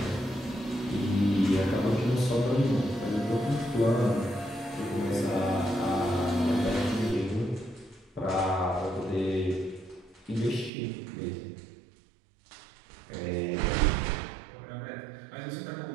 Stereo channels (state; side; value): drops out; left; at 10.7 s